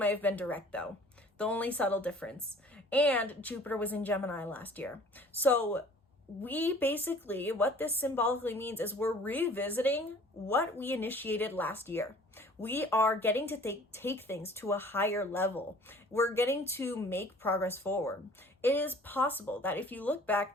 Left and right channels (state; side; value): normal; both; correlation 0.50